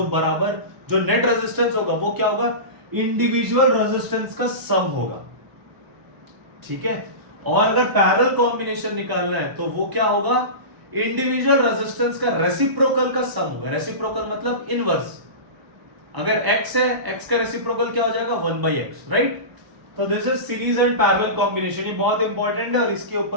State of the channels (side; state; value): left; late; 1.0 ms